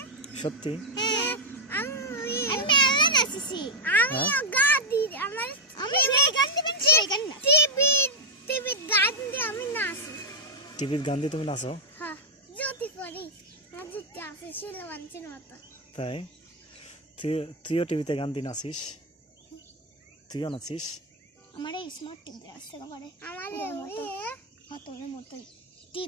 সত্যি? আমি মেলা নাচেছি। আমি গান দিই। আমি এই গান দিবেন, সেই গান না। টিভি গান দিয়ে আমি নাচি। টিভির গান দিয়ে তুমি নাচো? হ্যাঁ, যদি পড়ি যদি আছে শিলওয়ানচির মতো। তাই? তুইও টিভিতে গান দিয়ে নাচিস? তুইও নাচিস? আমার এই স্মার্ট টিভি আছে ঘরে। আমার তোর মতোই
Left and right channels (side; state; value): both; normal; correlation -0.02